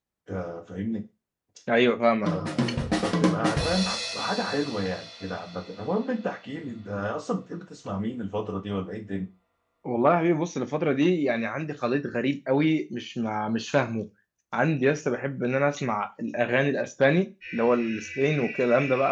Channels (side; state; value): both; identical; correlation 1.00